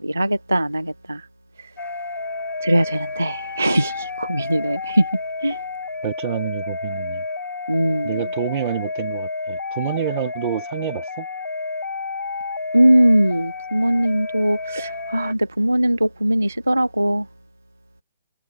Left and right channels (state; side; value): inverted; both; correlation -0.89